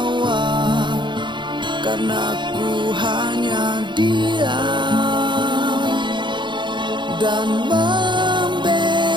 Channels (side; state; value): left; late; 0.23 ms